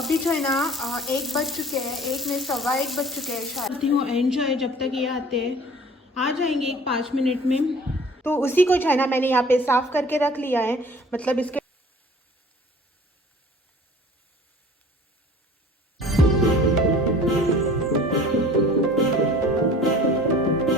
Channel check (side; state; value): both; normal; correlation 0.47